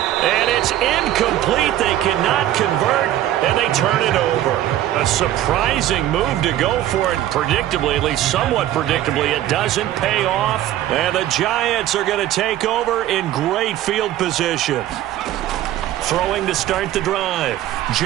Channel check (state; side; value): quieter; left; 13.1 dB